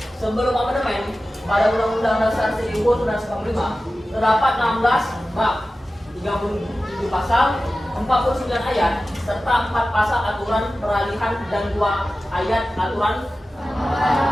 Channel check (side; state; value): both; normal; correlation 0.95